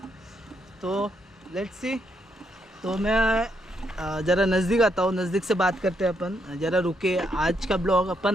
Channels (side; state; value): both; normal; correlation 0.77